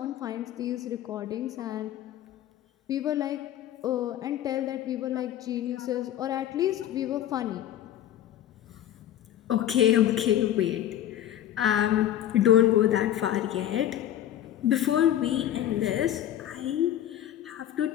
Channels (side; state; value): right; quieter; 11.7 dB